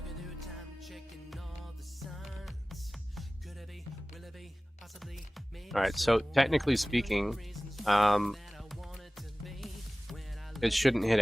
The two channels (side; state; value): both; normal; correlation 0.98